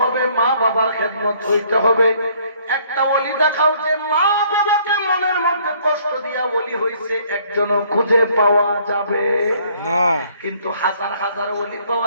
হবে, মা বাবার খেদমত হইতে হবে। একটা ওলি দেখাও যে মা বাবাকে মনের মধ্যে কষ্ট দিয়া ওলি হইছে, একজনও খুঁজে পাওয়া যাবে না। কিন্তু হাজার হাজার ওলি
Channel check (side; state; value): both; inverted; correlation -0.62